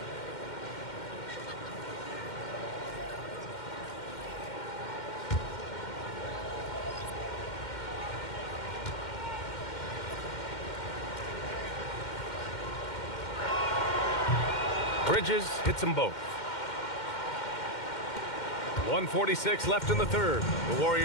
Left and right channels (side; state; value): right; late; 2.1 ms